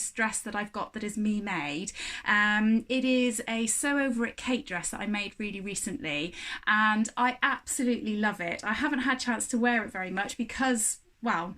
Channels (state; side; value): identical; both; correlation 1.00